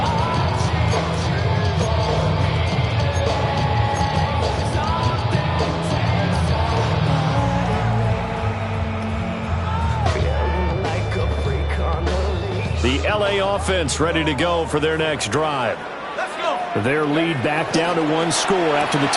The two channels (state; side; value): identical; both; correlation 1.00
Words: The LA offense ready to go for their next drive. Their lead back down to one score after the